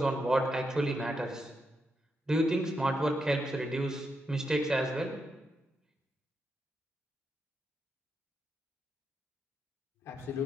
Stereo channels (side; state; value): both; normal; correlation 0.83